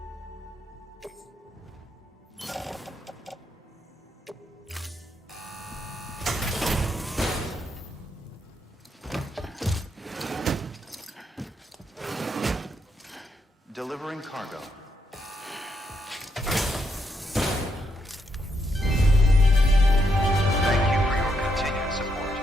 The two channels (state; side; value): normal; both; correlation 0.78